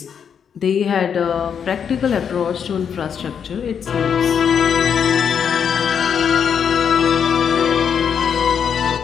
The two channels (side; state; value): right; quieter; 7.5 dB